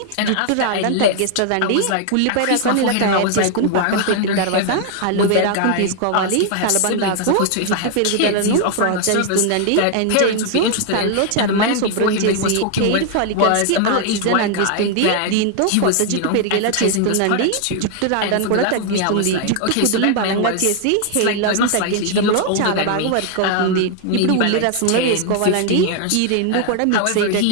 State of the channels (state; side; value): different; both; correlation 0.00